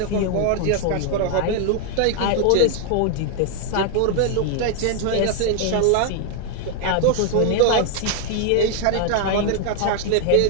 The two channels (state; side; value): different; both; correlation 0.00